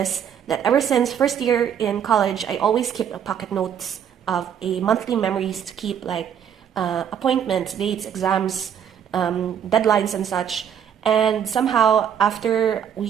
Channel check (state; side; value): quieter; left; 8.6 dB